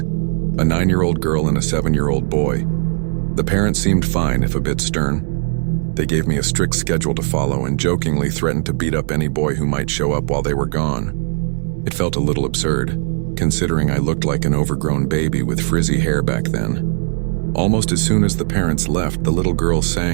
a 9-year-old girl and a 7-year-old boy. The parents seemed fine, if a bit stern. They gave me a strict schedule to follow and jokingly threatened to beat up any boy who might show up while they were gone. It felt a little absurd, considering I looked like an overgrown baby with frizzy hair back then. Almost as soon as the parents left, the little girl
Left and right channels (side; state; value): left; silent; 67 dB below the other